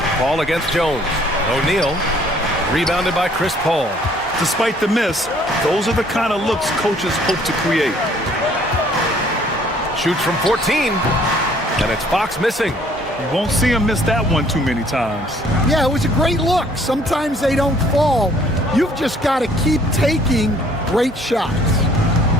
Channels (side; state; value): both; normal; correlation 0.60